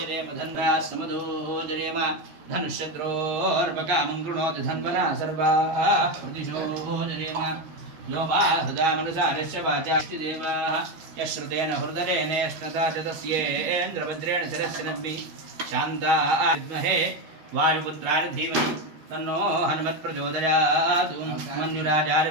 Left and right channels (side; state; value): left; late; 13 ms